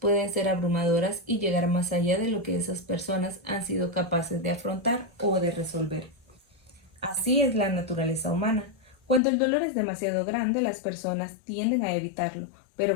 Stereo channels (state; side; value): drops out; right; at 9.2 s